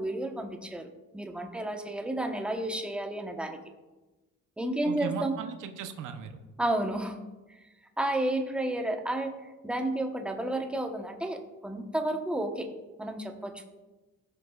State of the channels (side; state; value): both; normal; correlation 0.74